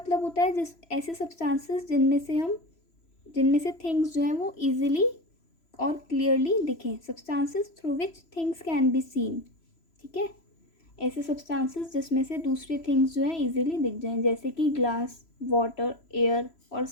होता है जिस ऐसे सब्सटेंसेस जिनमें से थिंग्स जो हैं वो इजीली और क्लियरली दिखें. Substances through which things can be seen. ठीक है, ऐसे सब्सटेंसेस जिसमें से दूसरी थिंग्स जो हैं इजीली दिख जाएं, जैसे कि ग्लास, वाटर, एयर और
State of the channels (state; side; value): late; right; 3.0 ms